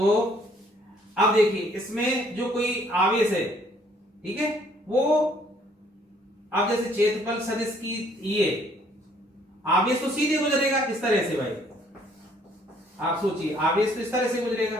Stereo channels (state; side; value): normal; both; correlation 0.62